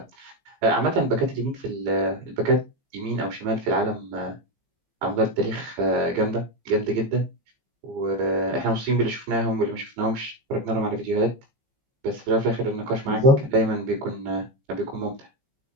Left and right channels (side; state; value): left; late; 15 ms